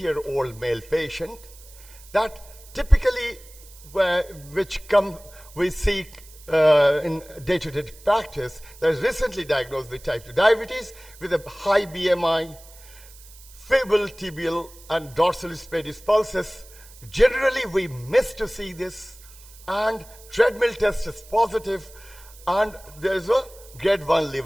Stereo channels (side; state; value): right; noise; hiss, 21 dB below the sound